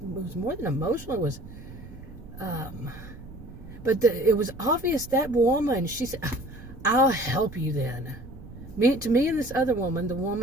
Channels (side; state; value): right; noise; rumble, 15 dB below the sound